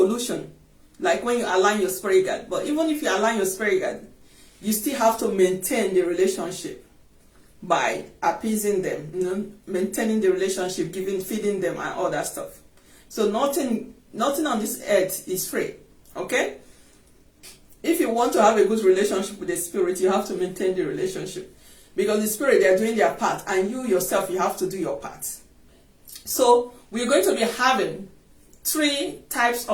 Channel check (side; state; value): both; identical; correlation 1.00